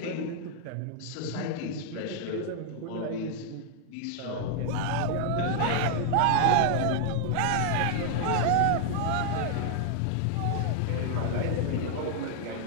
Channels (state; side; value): different; both; correlation 0.00